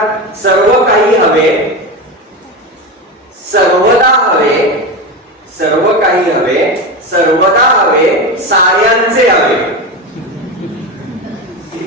सर्व काही हवे, सर्वदा हवे, सर्व काही हवे, सर्वदा हवे, साऱ्यांचे हवे.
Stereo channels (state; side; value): normal; both; correlation 0.20